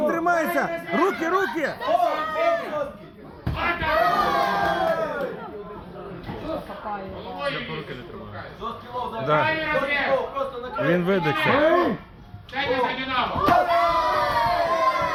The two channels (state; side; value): identical; both; correlation 1.00